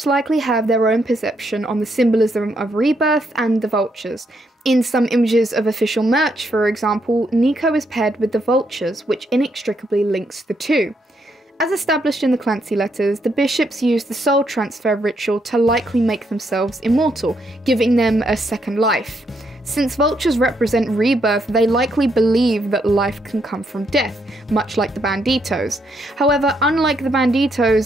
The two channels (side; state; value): both; normal; correlation 0.76